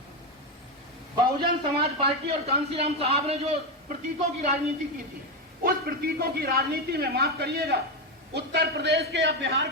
बहुजन समाज पार्टी और कांसीराम साहब ने जो प्रतीकों की राजनीति की थी, उस प्रतीकों की राजनीति में माफ करिएगा, उत्तर प्रदेश के या बिहार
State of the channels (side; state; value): both; normal; correlation 0.10